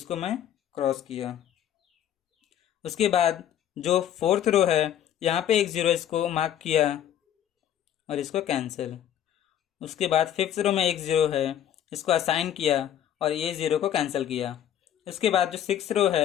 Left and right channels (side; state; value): right; quieter; 10.5 dB